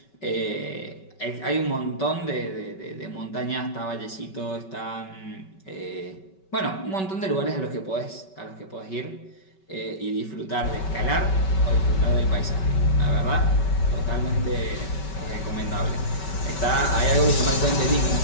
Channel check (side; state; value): right; late; 5.3 ms